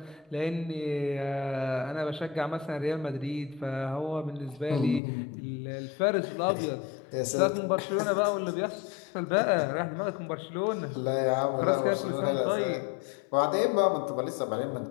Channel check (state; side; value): drops out; right; at 5.0 s